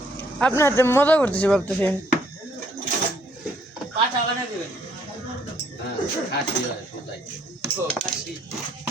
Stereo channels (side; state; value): both; normal; correlation 0.67